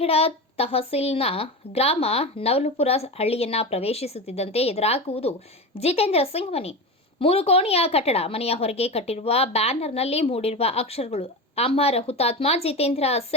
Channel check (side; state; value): both; normal; correlation 0.23